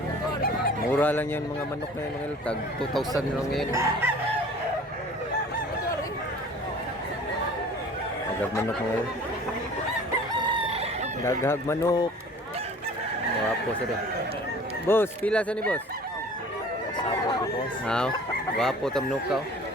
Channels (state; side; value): normal; both; correlation 0.46